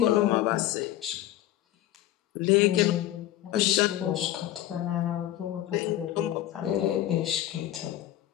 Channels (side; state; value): right; quieter; 13.5 dB